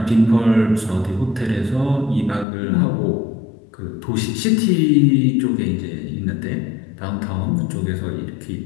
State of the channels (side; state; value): right; drops out; at 2.5 s